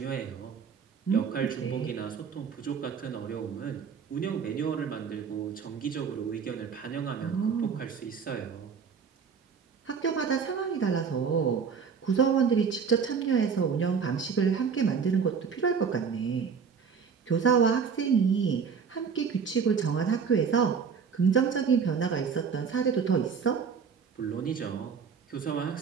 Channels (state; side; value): quieter; left; 6.3 dB